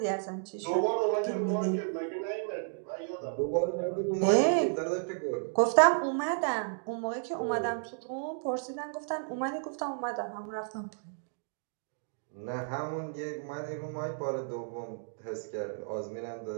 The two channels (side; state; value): left; silent; digital silence